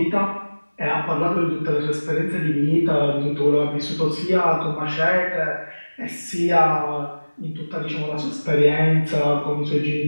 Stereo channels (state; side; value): inverted; both; correlation -1.00